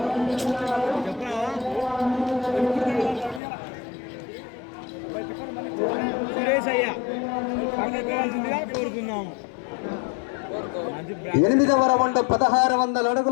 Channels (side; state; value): right; drops out; at 3.4 s